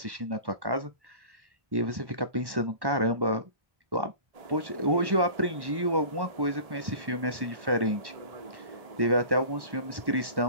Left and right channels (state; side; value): late; left; 1.1 ms